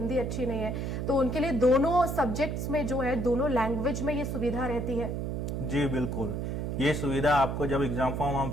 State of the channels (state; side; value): noise; right; hum, 2 dB below the sound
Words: अच्छी नहीं है तो उनके लिए दोनों सब्जेक्ट्स में जो है, दोनों लैंग्वेज में ये सुविधा रहती है। जी बिल्कुल, ये सुविधा आपको जब एग्जाम फॉर्म हम